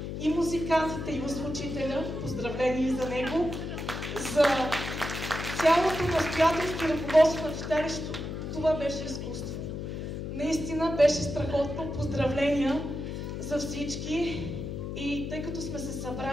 и музикантите, и озвучителя, поздравления за него, за цялото настоятелство и ръководство на читалището. Това беше изкуство. Наистина беше страхотно. Поздравления за всички. И тъй като сме се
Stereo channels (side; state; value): left; noise; hum, 5 dB below the sound